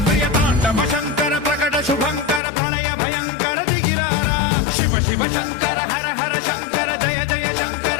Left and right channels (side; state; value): right; drops out; at 2.4 s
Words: प्रियताण्डव शङ्कर प्रकट शुभङ्कर प्रणय भयङ्कर दिगिरारा शिव शिव शङ्कर हर हर शङ्कर जय जय शङ्कर